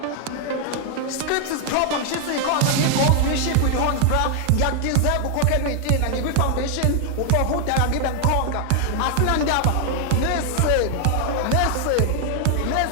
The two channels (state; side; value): different; both; correlation 0.00